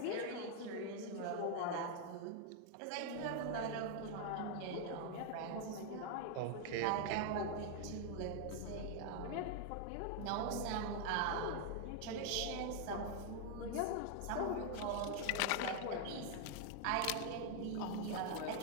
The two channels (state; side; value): different; both; correlation 0.00